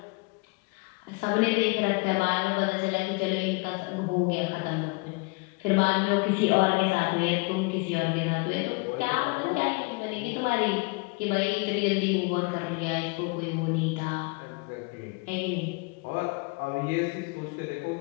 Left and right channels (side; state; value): right; quieter; 29.6 dB